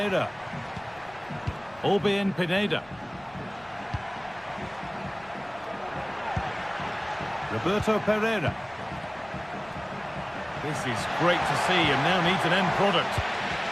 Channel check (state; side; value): noise; left; rumble, 26 dB below the sound